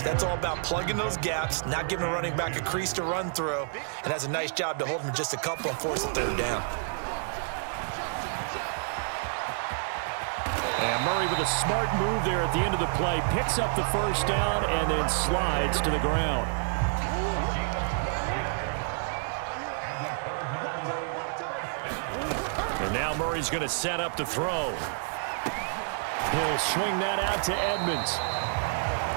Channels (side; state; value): left; silent; digital silence